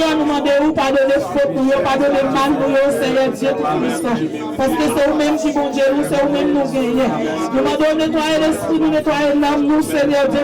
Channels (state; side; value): identical; both; correlation 1.00